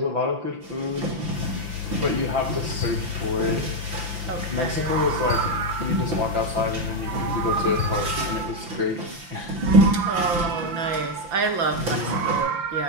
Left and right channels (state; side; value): late; left; 5.9 ms